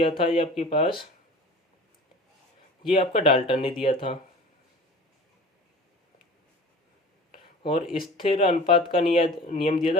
था ये आपके पास ये आपका डाल्टन ने दिया था। और स्थिर अनुपात का नियम दिया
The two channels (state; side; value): normal; both; correlation 0.41